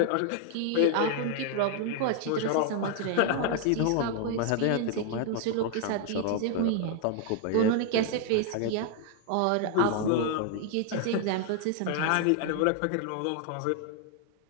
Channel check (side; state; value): both; different; correlation 0.00